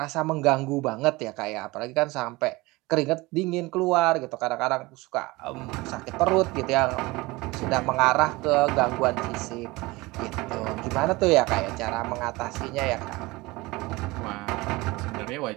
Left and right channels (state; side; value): quieter; left; 22.0 dB